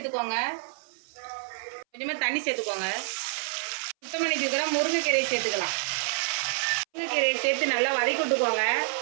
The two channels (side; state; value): left; silent; 59 dB below the other